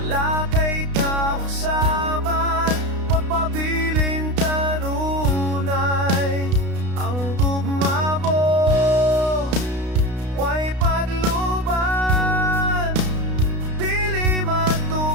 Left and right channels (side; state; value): left; late; 32 ms